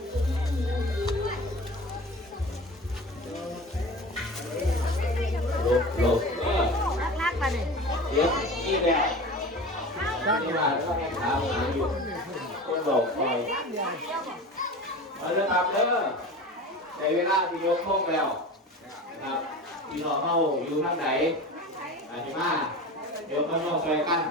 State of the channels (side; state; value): both; normal; correlation 0.34